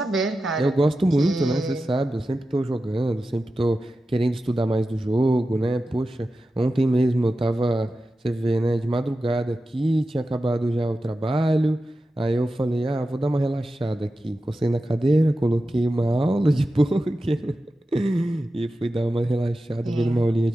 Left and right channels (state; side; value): normal; both; correlation 0.92